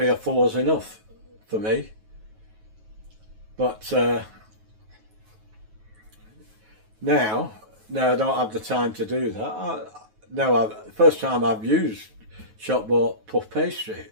or 4 is enough for me, but now I don't have the time to do that. First time I've used shop bought puff pastry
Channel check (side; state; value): left; late; 9.3 ms